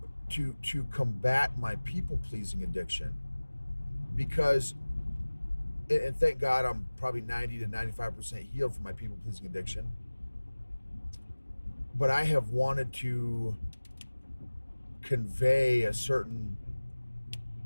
to combat my people-pleasing addiction. Because, and thank God I'm probably 90 to 95% healed from my people-pleasing addiction, but I have wanted to convey a certain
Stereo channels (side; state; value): both; inverted; correlation -1.00